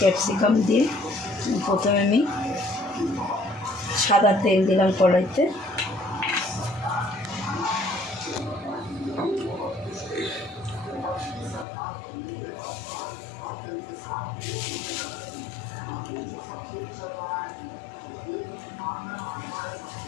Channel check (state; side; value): drops out; right; at 11.7 s